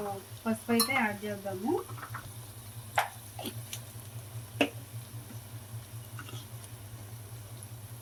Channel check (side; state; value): both; identical; correlation 1.00